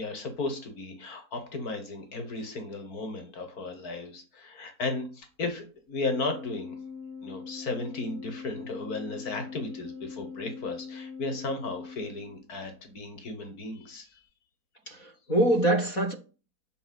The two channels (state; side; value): late; right; 4.1 ms